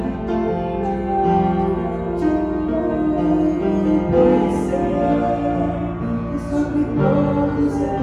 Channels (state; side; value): identical; both; correlation 1.00